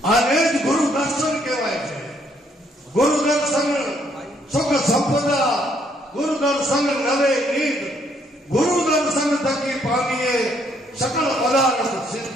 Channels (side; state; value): both; normal; correlation 0.69